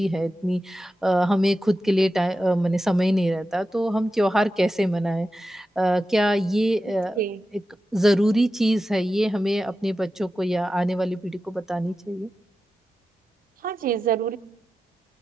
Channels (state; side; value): normal; both; correlation 0.92